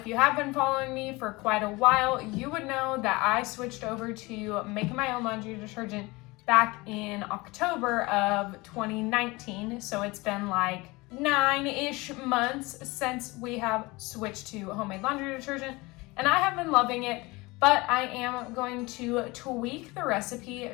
you have been following me for quite a while, you would know that I switched over to making my own laundry detergent back in October of 2019, so it's been like 9-ish months since we have switched to homemade laundry detergent, and I have been loving it, but I am going to tweak the recipe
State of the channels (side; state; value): right; quieter; 23.2 dB